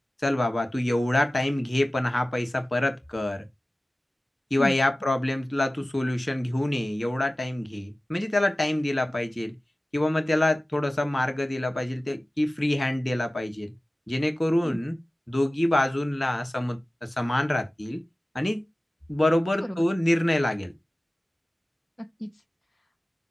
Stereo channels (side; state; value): both; normal; correlation 0.97